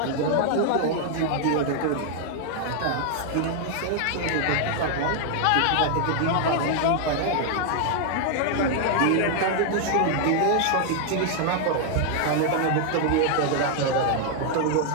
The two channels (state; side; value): different; both; correlation 0.00